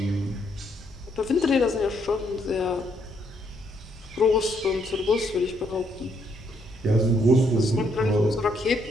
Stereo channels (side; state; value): both; normal; correlation 0.73